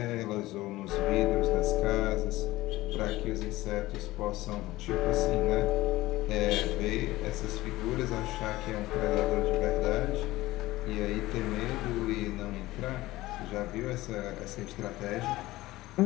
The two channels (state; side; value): quieter; right; 17.8 dB